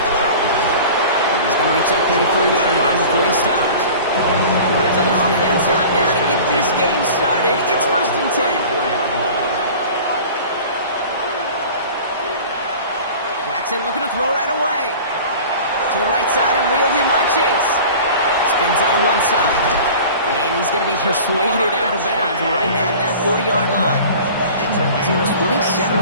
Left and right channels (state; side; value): inverted; both; correlation -0.40